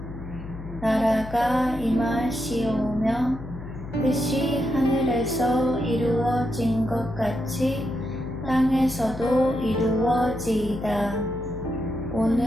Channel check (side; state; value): left; noise; hum, 12 dB below the sound